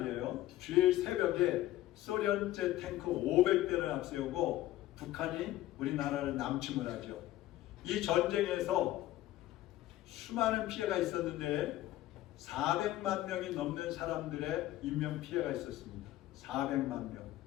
주일 새벽에 소련제 탱크 500대를 앞세우고 북한이 우리나라를 남침을 하죠. 이 전쟁에서 수많은 피해가 있었는데 400만 명이 넘는 사람들의 인명피해가 있었습니다. 400만 명.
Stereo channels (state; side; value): quieter; right; 15.0 dB